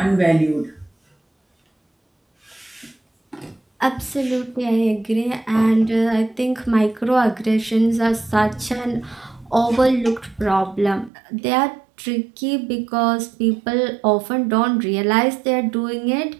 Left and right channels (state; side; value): drops out; left; at 11.1 s